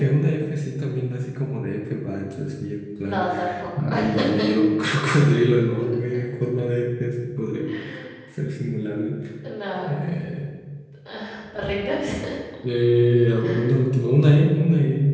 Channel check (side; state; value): both; identical; correlation 1.00